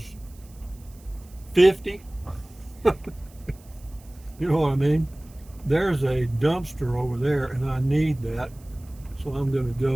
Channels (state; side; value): noise; right; hiss, 27 dB below the sound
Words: 50. You know what I mean? There's a dumpster over there, and I need that. So I'm going to